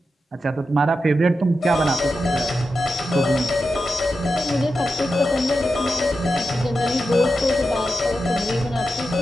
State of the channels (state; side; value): normal; both; correlation 0.89